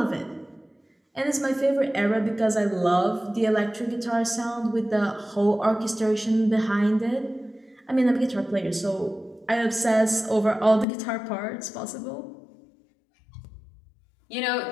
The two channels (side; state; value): right; drops out; at 10.9 s